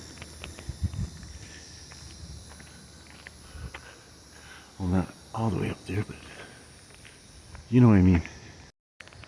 Well, not all the way up there, but you know what I mean.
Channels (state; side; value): identical; both; correlation 1.00